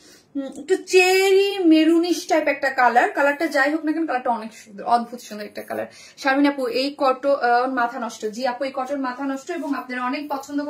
একটু চেরি মেরুনিশ টাইপ একটা কালার। কালারটা যাই হোক না কেন কালারটা অনেক সুন্দর, অদ্ভুত সুন্দর একটা কালার। শারমিন আপু এই কটন মাথা নষ্ট। জি আপু এই কটন মাথা নষ্ট, এবং আপনারা অনেক পছন্দ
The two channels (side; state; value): both; identical; correlation 1.00